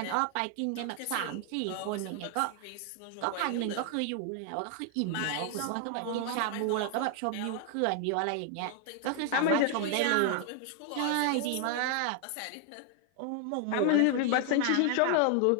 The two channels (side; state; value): both; different; correlation 0.00